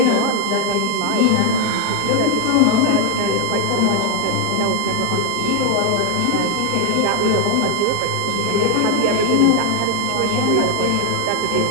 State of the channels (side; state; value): both; different; correlation 0.01